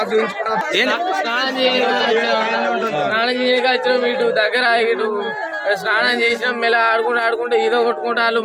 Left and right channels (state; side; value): identical; both; correlation 1.00